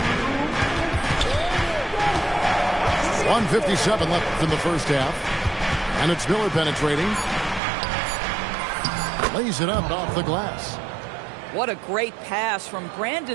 1:57 left in the first half. And it's Miller penetrating. Lays it up off the glass. What a great pass from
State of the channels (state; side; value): drops out; left; at 7.6 s